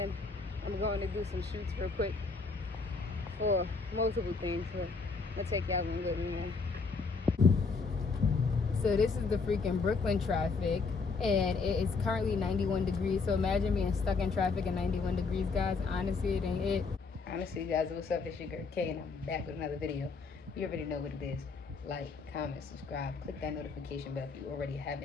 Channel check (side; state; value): right; quieter; 4.5 dB